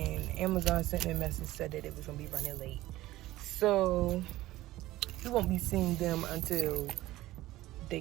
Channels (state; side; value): quieter; left; 16.5 dB